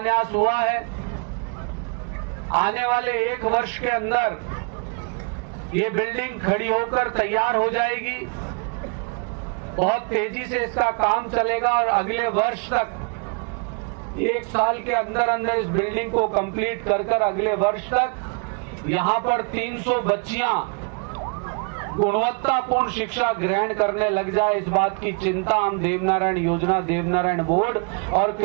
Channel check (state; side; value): quieter; left; 35.1 dB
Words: हुआ है। आने वाले 1 वर्ष के अंदर ये बिल्डिंग खड़ी होकर तैयार हो जाएगी। बहुत तेजी से इसका काम चलेगा और अगले वर्ष तक 1 साल के अंदर अंदर इस बिल्डिंग को कंप्लीट कर अगले वर्ष तक यहाँ पर 300 बच्चियां गुणवत्तापूर्ण शिक्षा ग्रहण करने लग जाए, इस बात की चिंता हम देवनारायण योजना, देवनारायण बोर्ड और